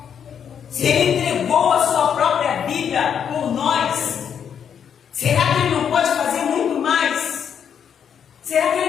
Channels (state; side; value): quieter; right; 8.0 dB